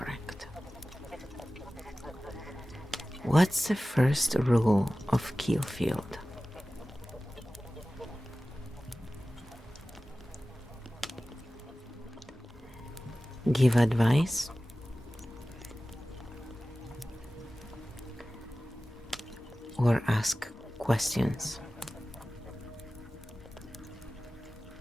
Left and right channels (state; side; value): normal; both; correlation 0.96